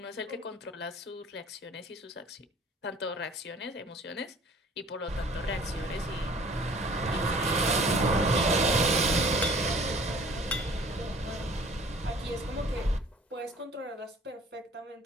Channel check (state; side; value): normal; both; correlation 0.51